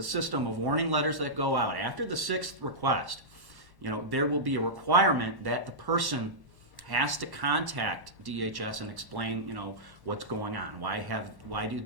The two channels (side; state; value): left; late; 1.1 ms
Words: system of warning letters that go out. After the sixth request, there will be a requirement that the person has to contact DHS and explain, what's going on. Why